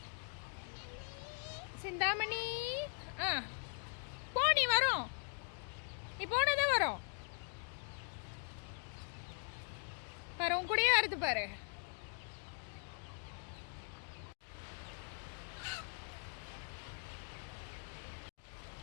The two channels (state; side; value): silent; right; 50 dB below the other